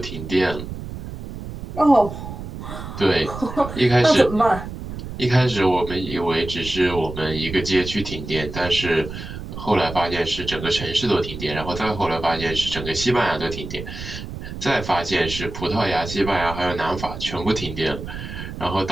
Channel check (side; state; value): right; noise; rumble, 9 dB below the sound